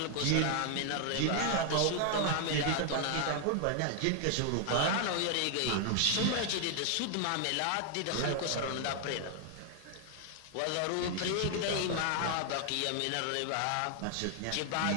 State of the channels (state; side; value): different; both; correlation 0.00